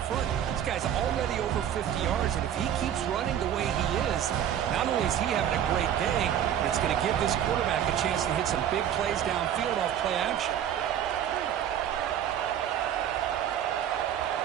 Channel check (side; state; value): left; quieter; 10.0 dB